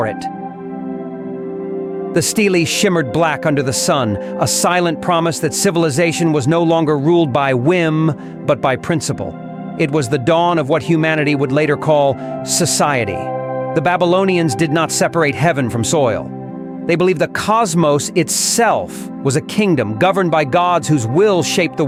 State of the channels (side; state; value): both; identical; correlation 1.00